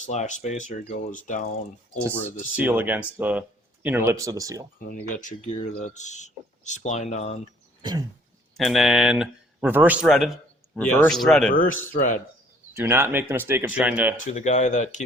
spacer goes down over the seal against the inner lips of the seal. And then you got your gear that's splined on. And then reverse threaded. Reverse threaded. Reverse thread. Do not make the mistake of trying to. To the guy that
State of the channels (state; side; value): normal; both; correlation 0.60